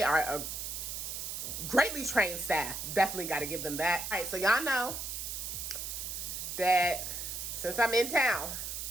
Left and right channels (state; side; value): noise; right; hiss, 5 dB below the sound